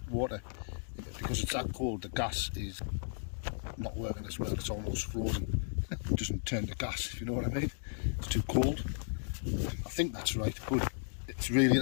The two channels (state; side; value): silent; right; digital silence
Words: water, because it's that cold, the gas is not working as well. It's almost frozen. It doesn't turn to gas, if you know what I mean. It's too cold. I think that's right, but it's really